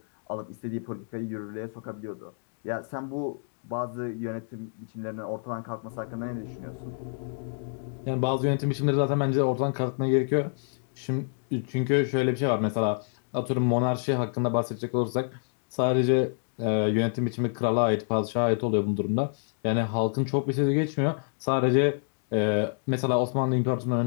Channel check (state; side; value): silent; right; digital silence